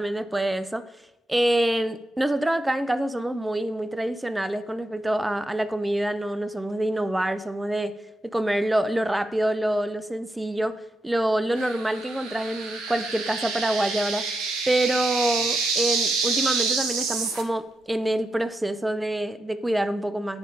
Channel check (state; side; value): normal; both; correlation 0.86